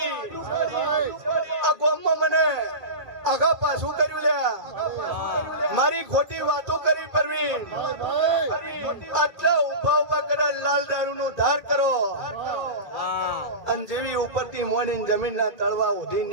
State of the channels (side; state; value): left; late; 2.4 ms